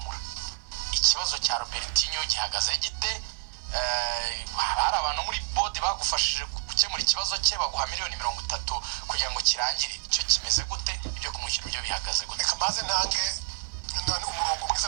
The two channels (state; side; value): silent; left; digital silence